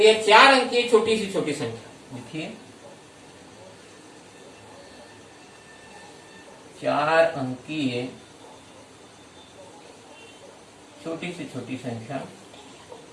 ये 4 अंक की छोटी संख्या देखिए, 4 अंकीय छोटी संख्या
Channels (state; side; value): identical; both; correlation 1.00